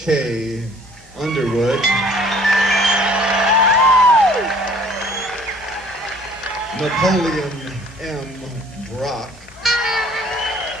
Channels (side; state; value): both; normal; correlation 0.55